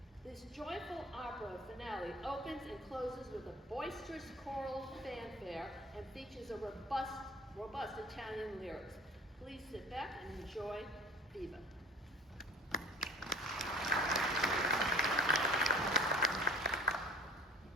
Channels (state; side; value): normal; both; correlation 0.44